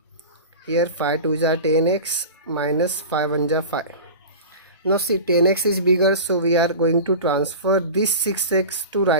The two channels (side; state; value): both; inverted; correlation -0.31